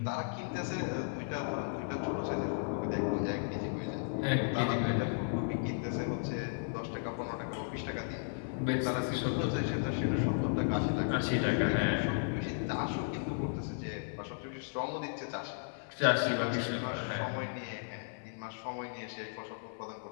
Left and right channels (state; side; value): silent; right; 55 dB below the other